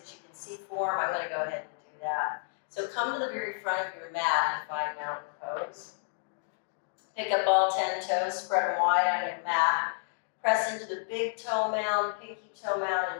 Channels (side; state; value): right; silent; digital silence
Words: you can see form, I'm going to go ahead and do that. So come to the very front of your mat and find mountain pose. Pick up all 10 toes, spread them wide on your mat. Press into the big toe mound, pinky toe mound,